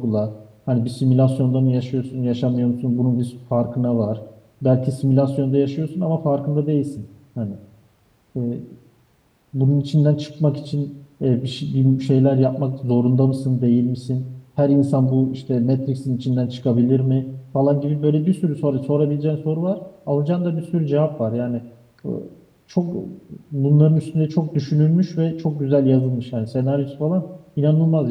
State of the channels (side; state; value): both; identical; correlation 1.00